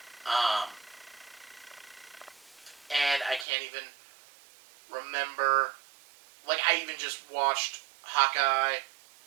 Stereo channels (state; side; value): drops out; left; at 3.5 s